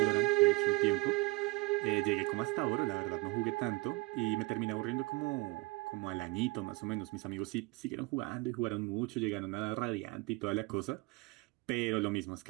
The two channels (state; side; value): quieter; left; 25.0 dB